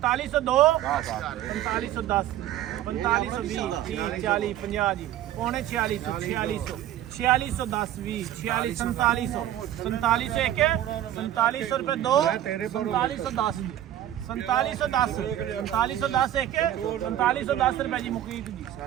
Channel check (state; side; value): quieter; left; 12.4 dB